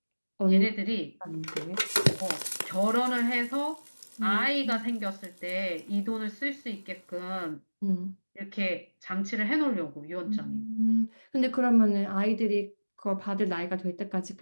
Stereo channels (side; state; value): both; inverted; correlation -1.00